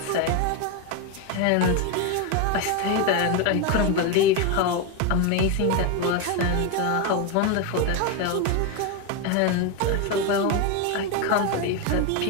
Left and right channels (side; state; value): both; different; correlation 0.02